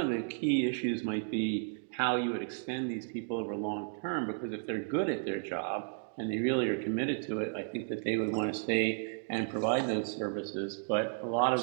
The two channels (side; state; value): left; silent; digital silence